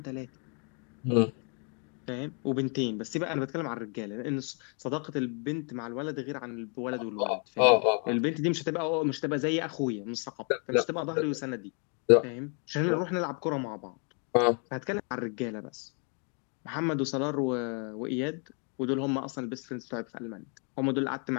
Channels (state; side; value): quieter; right; 39.0 dB